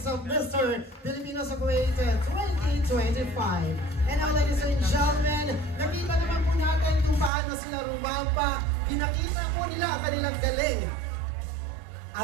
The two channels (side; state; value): left; drops out; at 7.3 s